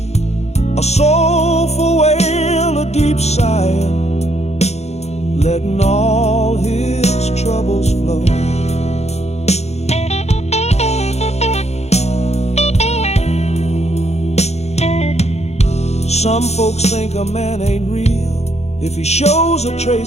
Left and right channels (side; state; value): right; late; 0.31 ms